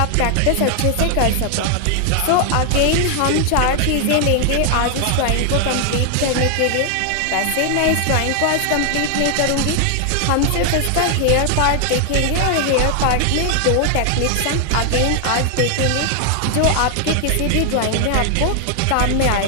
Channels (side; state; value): both; different; correlation 0.00